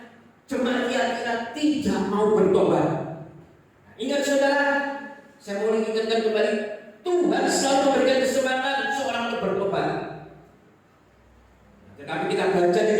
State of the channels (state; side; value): identical; both; correlation 1.00